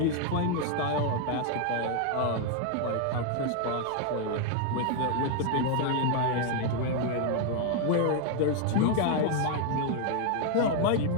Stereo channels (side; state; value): both; different; correlation 0.00